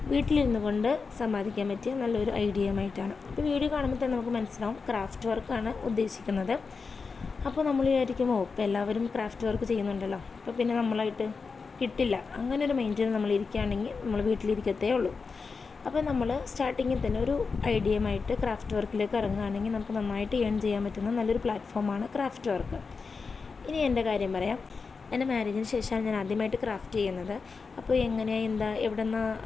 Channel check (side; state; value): right; quieter; 4.8 dB